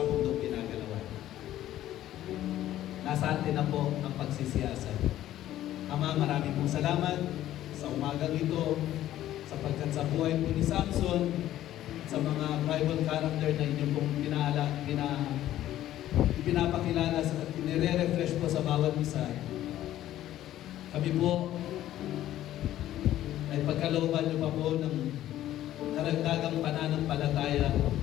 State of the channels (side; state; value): right; quieter; 13.2 dB